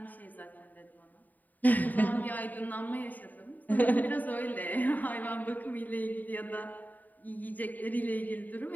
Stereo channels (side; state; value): right; late; 0.084 ms